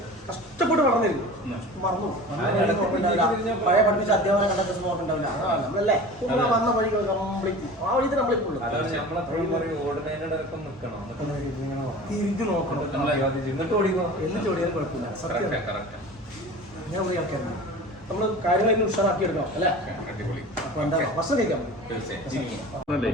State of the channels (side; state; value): both; normal; correlation 0.37